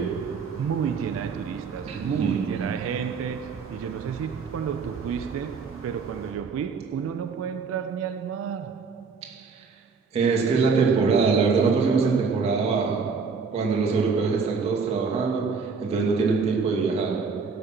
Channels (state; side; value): quieter; left; 5.1 dB